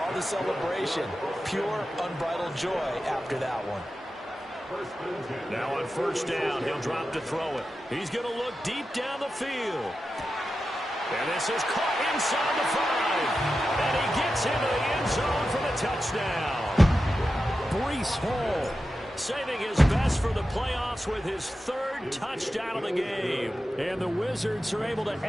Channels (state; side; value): normal; both; correlation 0.91